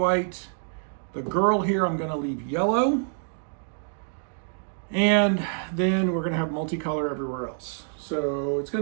The girl here I'm gonna leave yellow. And then we're gonna have multicolor everywhere else. So it's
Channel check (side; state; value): left; silent; digital silence